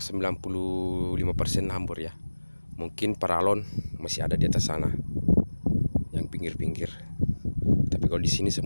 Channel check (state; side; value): inverted; both; correlation -1.00